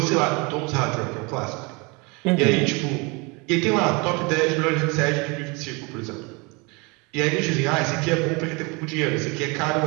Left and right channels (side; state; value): left; quieter; 28.5 dB